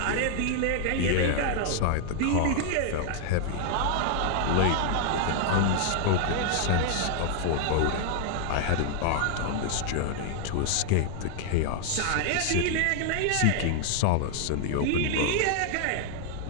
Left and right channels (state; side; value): different; both; correlation 0.00